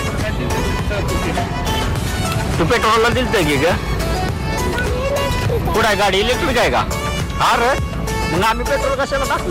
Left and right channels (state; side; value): identical; both; correlation 1.00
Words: तू पेट्रोलला दिलत की ग? कुठं आहे गाडी? इलेक्ट्रिक आहे का? हा रे, मग आम्ही पेट्रोल कशाला